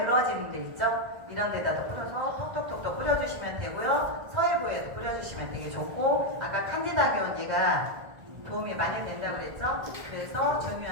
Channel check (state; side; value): late; left; 1.5 ms